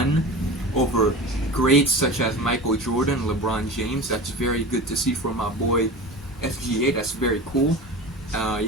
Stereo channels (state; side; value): normal; both; correlation 0.31